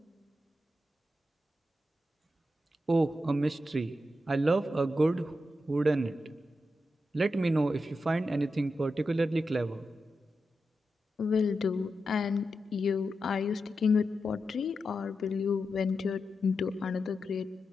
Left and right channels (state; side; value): normal; both; correlation 0.88